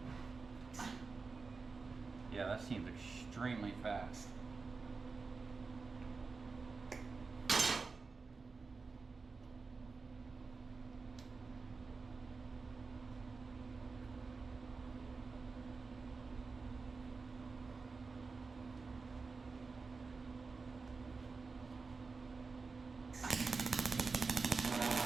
Yeah, that seems extremely fast.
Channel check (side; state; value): left; quieter; 4.4 dB